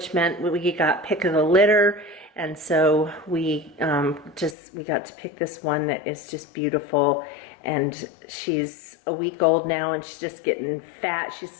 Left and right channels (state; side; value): drops out; right; at 4.5 s